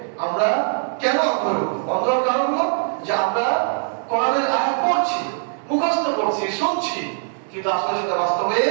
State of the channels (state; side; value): silent; left; 65 dB below the other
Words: আমরা কেন অন্ধ হয়ে উঠবো। অন্ধ হওয়ার কারণ হলো যে আমরা কোরআনের আয়াত পড়ছি, মুখস্থ করছি, শুনছি, কিন্তু আসলে সেটা বাস্তবে